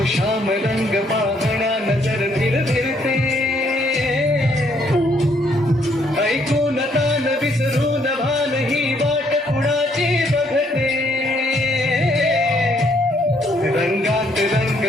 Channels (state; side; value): normal; both; correlation 0.69